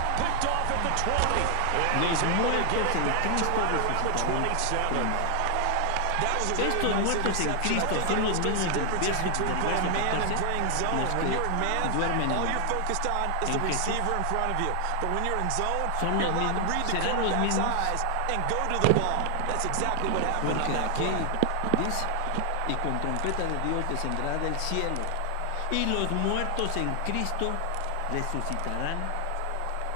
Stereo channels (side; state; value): both; different; correlation 0.00